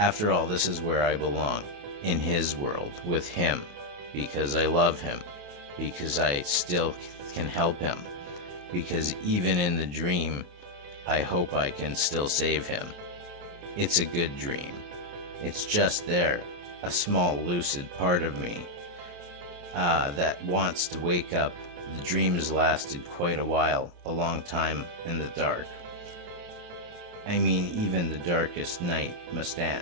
all, this is where I belong, in his world, with him, because I love him, because I still can help him, because even in the dream, I hope I can still save him. It's a good dream. It's just there, a small lucid part of me that wants to wake up. The dream has lasted quite a while, a long time in the dark. I mean, even the darkest night must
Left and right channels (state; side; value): late; left; 28 ms